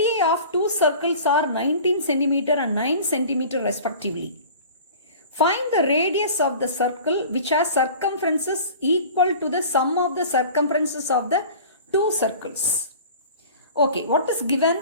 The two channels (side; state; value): both; inverted; correlation -0.41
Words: of two circles are 19 cm and 9 cm respectively. Find the radius of the circle which has circumferences equal to the sum of the circumferences of the two circles. Okay, what is given?